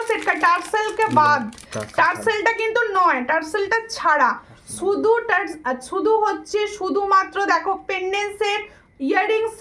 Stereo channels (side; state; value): both; identical; correlation 1.00